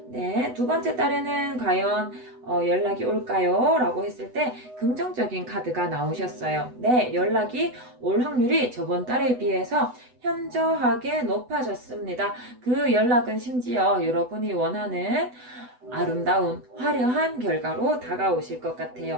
네, 두 번째 달에는 과연 연락이 올까요? 라고 했을 때 긍정적인 카드가 나오셨어요. 네, 연락이 올 확률이 저번 달에 비해서 현저하게 높아졌습니다. 그 연락은 심지어 여러분이 원하는 아름다운 화려한 결과로 다가오실 것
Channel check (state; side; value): late; left; 8.0 ms